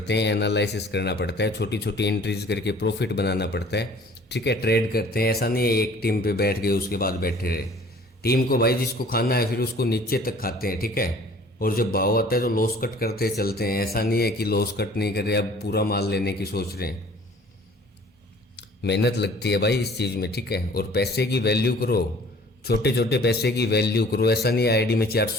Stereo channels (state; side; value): normal; both; correlation 0.51